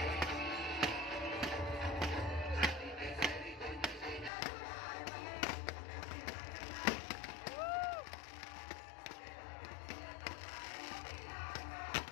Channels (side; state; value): right; drops out; at 4.3 s